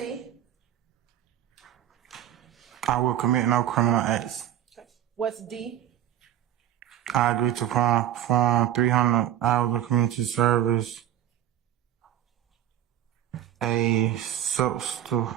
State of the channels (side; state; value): left; quieter; 11.9 dB